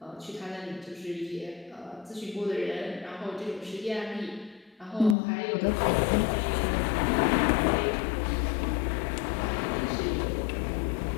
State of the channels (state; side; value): drops out; right; at 5.2 s